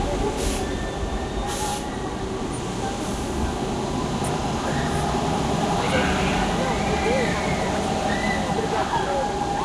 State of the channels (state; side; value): identical; both; correlation 1.00